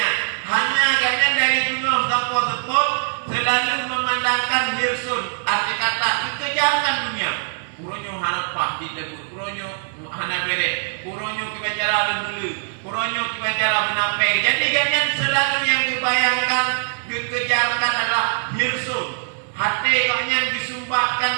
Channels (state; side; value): silent; left; digital silence